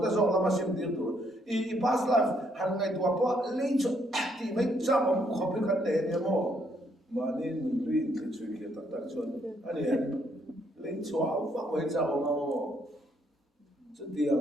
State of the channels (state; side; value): normal; both; correlation 0.71